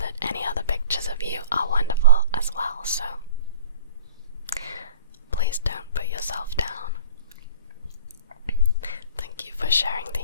any other pictures of you are wonderful as well, so please don't put yourself down. Thank you for sharing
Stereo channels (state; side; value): inverted; both; correlation -0.45